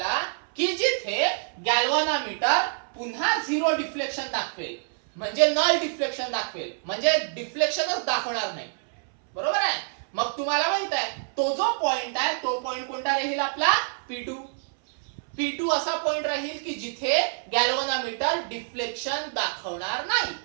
की जिथे गॅल्व्हनोमीटर पुन्हा झिरो डिफ्लेक्शन दाखवेल, म्हणजे नल डिफ्लेक्शन दाखवेल, म्हणजे डिफ्लेक्शनच दाखवणार नाही, बरोबर आहे. मग तुम्हाला माहित आहे तो जो पॉइंट आहे तो पॉइंट कोणता राहील आपला? P2. P2 असा पॉइंट राहील की जिथे गॅल्व्हनोमीटर डिफ्लेक्शन दाखवणार नाही.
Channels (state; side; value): silent; left; 61 dB below the other